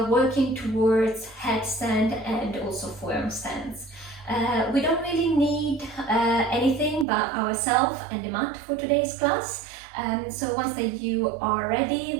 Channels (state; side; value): drops out; left; at 7.1 s